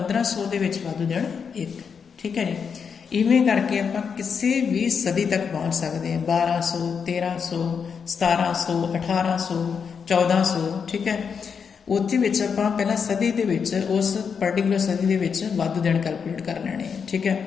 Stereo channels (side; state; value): right; quieter; 6.4 dB